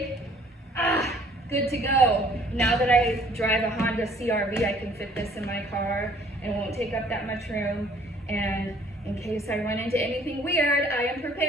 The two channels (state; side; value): normal; both; correlation 0.57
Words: Good to go. Now that I drive a Honda CR-V, I can fit this in my car and it won't take up that much room. And in case I run into anything weird, I am